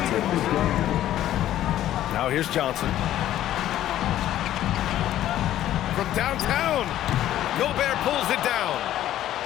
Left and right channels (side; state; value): right; quieter; 12.7 dB